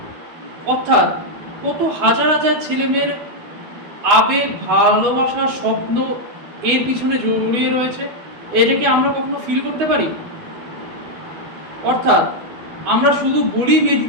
অর্থাৎ কত হাজার হাজার ছেলেমেয়ের আবেগ, ভালোবাসা, স্বপ্ন এর পিছনে জড়িয়ে রয়েছে। এটাকে আমরা কখনো ফিল করতে পারি? অর্থাৎ আমরা শুধু বলি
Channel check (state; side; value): late; left; 12 ms